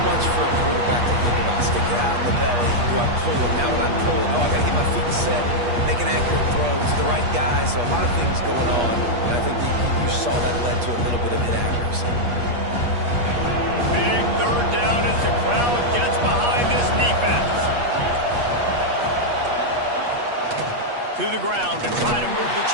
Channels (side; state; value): left; late; 8.4 ms